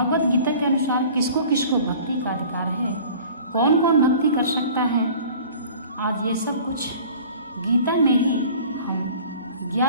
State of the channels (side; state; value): both; inverted; correlation -0.46